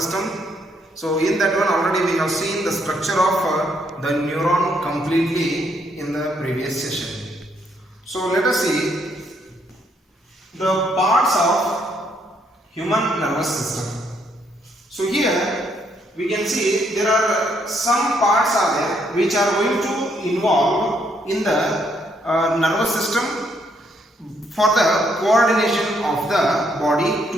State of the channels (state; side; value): normal; both; correlation 0.72